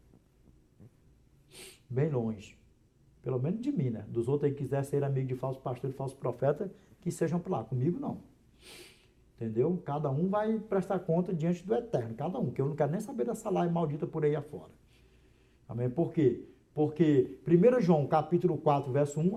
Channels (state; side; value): identical; both; correlation 1.00